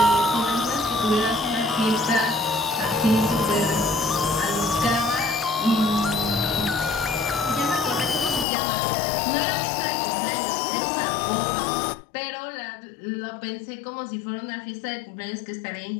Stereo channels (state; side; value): drops out; right; at 8.5 s